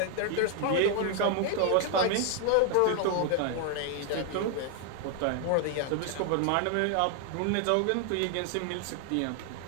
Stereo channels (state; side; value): different; both; correlation 0.00